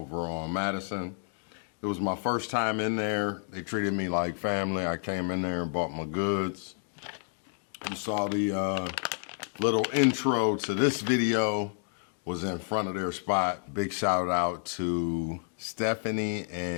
on Madison. It was my first time in there. They treated me like family. I came in there and bought my goods. You saw the little intro to this video was in front of their spot. Big shout out to Stephanie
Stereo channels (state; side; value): silent; right; 58 dB below the other